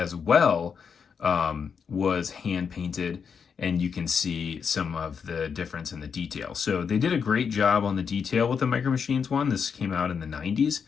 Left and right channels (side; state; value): right; quieter; 6.4 dB